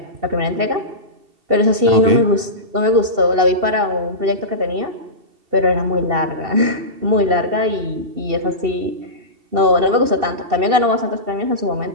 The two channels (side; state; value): left; late; 2.7 ms